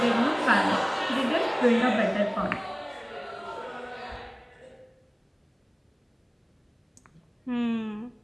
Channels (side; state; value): both; identical; correlation 1.00